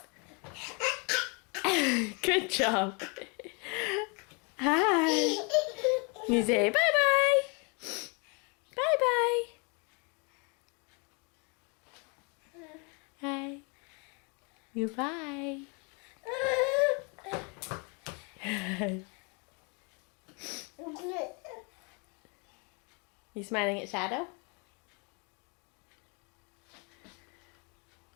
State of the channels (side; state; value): right; quieter; 33.5 dB